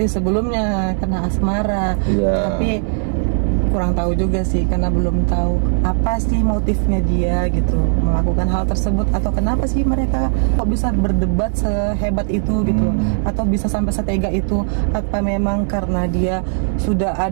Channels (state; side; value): silent; left; digital silence